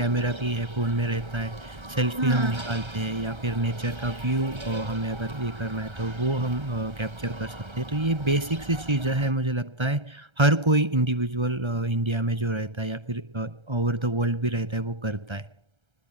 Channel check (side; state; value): left; late; 1.3 ms